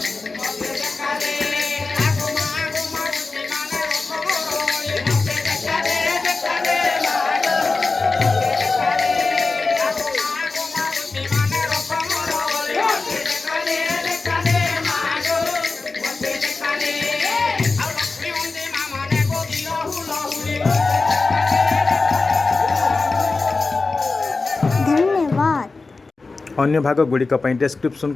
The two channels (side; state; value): right; quieter; 3.8 dB